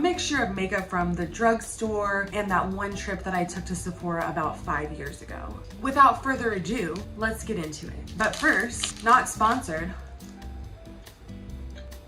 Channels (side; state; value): both; identical; correlation 1.00